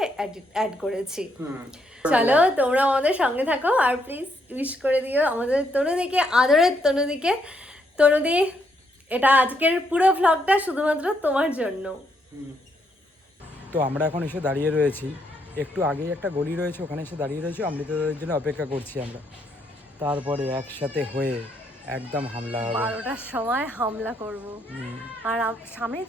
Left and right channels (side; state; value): both; normal; correlation 0.75